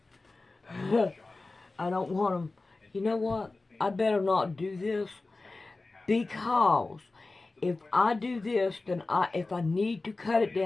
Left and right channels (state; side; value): quieter; right; 3.4 dB